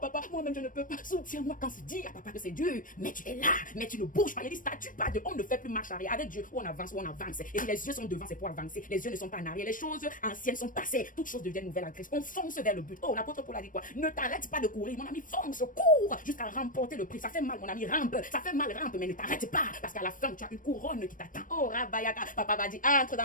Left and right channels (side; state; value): right; late; 0.39 ms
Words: moi-même je ne peux pas, soutiens-moi. Quand tu dis à papa que c'est dur, mais tu es là, mais tu ne bouges pas. Il y a des statuts pas de, on ne fait plus marche arrière. Avec Dieu, ou on avance, ou on avance. Et les yeux sont devant, c'est pour avancer. Les yeux ne sont pas en arrière. Les choses anciennes sont passées. Toutes choses deviennent nouvelles en Christ. On fonce vers le but. Oh, l'apôtre Paul a dit quoi? Ne t'arrête pas de courir, mon ami, fonce, cours, jusqu'à remporter le prix. Ça fait mal, mon ami, rampe. Ça fait mal, rampe, mais ne t'arrête pas, parce qu'à la fin, tu as une couronne qui t'attend. Oh, Rabayaka, papa va dire, entre